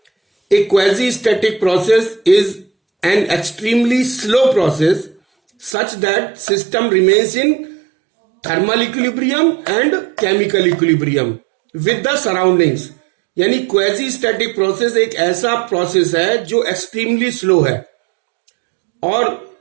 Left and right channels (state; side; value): drops out; left; at 5.8 s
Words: A quasi-static process is an extremely slow process such that system remains in thermal equilibrium and chemical equilibrium with the surroundings. यानी quasi static process एक ऐसा process है जो extremely slow है और